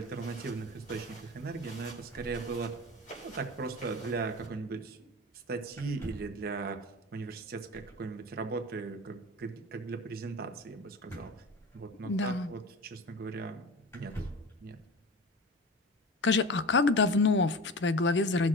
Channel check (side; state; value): both; normal; correlation 0.33